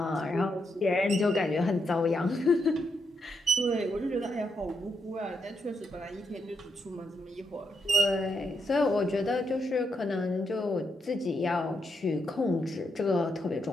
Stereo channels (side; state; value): both; normal; correlation 0.81